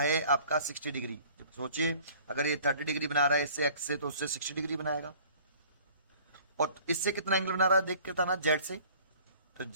आपका 60 डिग्री। सोचिए अगर ये 30 डिग्री बना रहा है इससे एक्स से, तो उससे 60 डिग्री बनाएगा। और इससे कितना एंगल बना रहा है देख के था ना, जेड से, तो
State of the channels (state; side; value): inverted; both; correlation -0.51